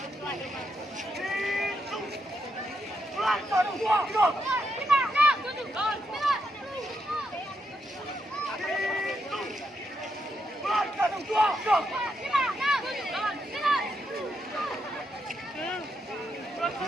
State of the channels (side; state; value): both; normal; correlation 0.81